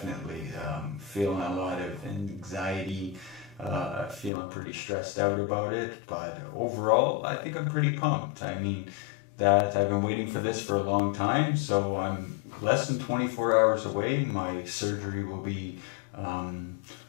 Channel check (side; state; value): right; drops out; at 4.3 s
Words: Feeling a lot of anxiety, feeling pretty stressed out about it, but overall I think I'm pretty pumped. I mean, that I've been waiting for this for a long time, so I'm less than 24 hours away. My surgery will be